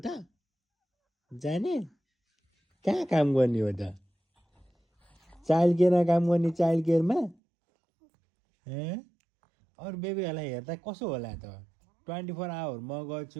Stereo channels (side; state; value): left; drops out; at 7.4 s